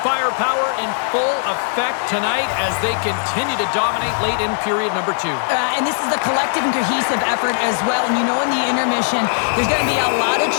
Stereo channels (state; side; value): silent; right; digital silence